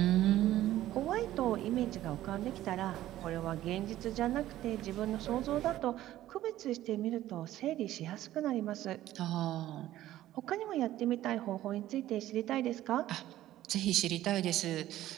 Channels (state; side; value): quieter; left; 14.0 dB